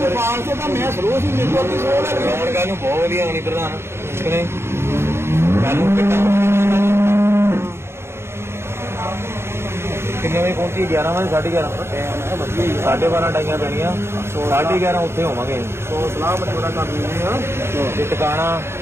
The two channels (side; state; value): left; late; 0.12 ms